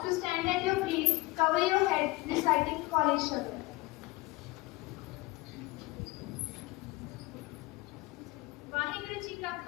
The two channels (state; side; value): quieter; right; 21.6 dB